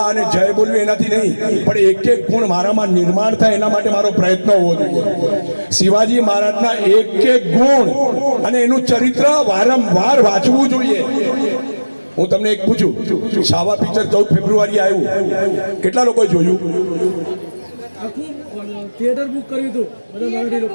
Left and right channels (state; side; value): inverted; both; correlation -1.00